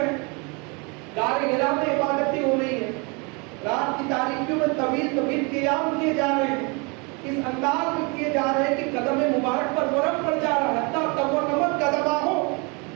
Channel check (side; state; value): left; quieter; 30.9 dB